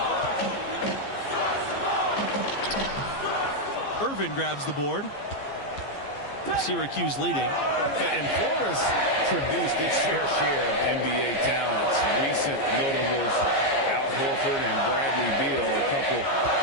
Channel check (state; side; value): late; right; 15 ms